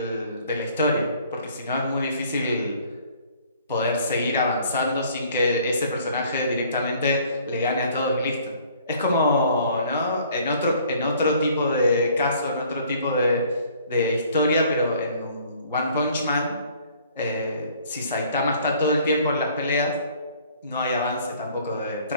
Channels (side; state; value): both; inverted; correlation -0.57